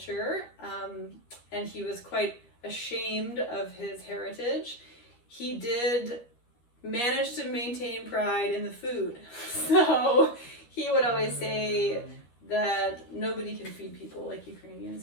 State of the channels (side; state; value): right; late; 13 ms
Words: and he was quite ashamed of his heritage, he did manage to maintain pride in the food. So he would always say that nobody can feed people like Ukrainians